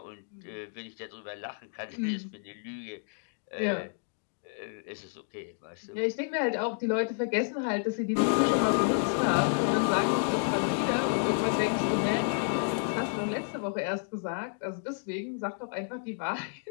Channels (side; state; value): right; silent; 57 dB below the other